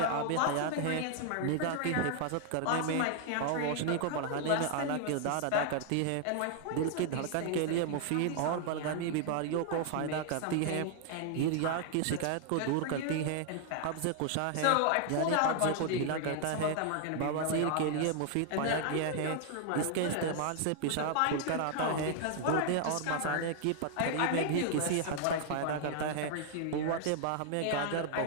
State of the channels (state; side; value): different; both; correlation 0.00